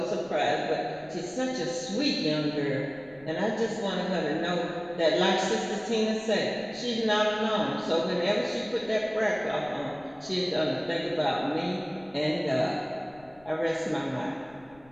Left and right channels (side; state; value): left; noise; rumble, 28 dB below the sound